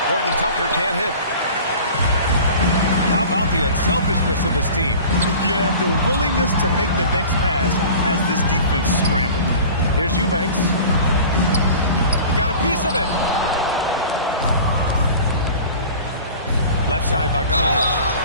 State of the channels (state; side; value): inverted; both; correlation -0.41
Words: Horton Tucker can't hit. How about the unselfishness of this team? Yeah, the willingness to make the next pass has this defense scrambled. Here's Eubanks. He got a piece of it. Left side, Bogdanovich.